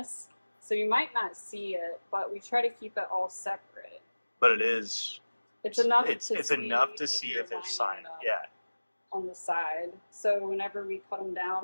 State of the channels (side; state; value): both; inverted; correlation -1.00